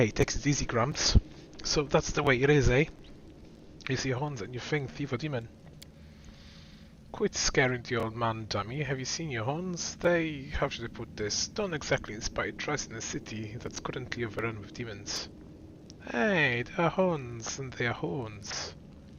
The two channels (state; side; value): identical; both; correlation 1.00